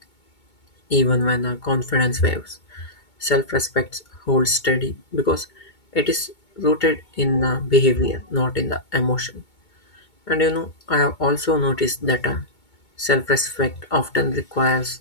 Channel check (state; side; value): late; right; 2.2 ms